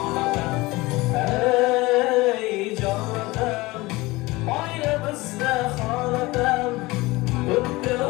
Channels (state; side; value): quieter; right; 21.3 dB